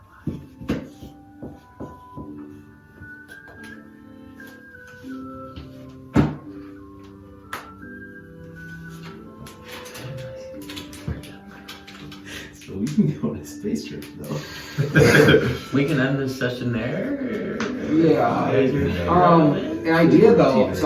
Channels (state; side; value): identical; both; correlation 1.00